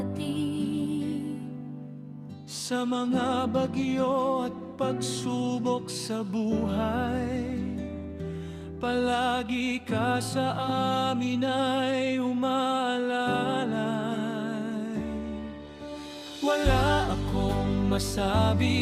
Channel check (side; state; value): both; identical; correlation 1.00